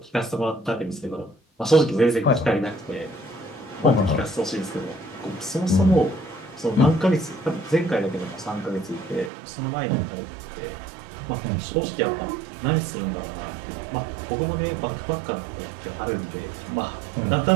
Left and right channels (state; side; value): drops out; left; at 9.3 s